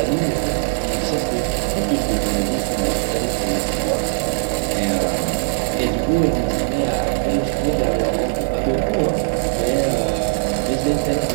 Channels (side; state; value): left; silent; 66 dB below the other